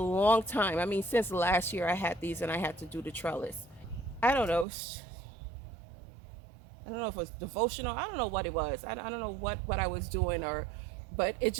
time. I mean, since last year I had these and I had to do the trellis. I don't know. I don't know if it was devotional. I don't know what it was. I don't know what I was doing, or, but it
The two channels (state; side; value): drops out; left; at 4.7 s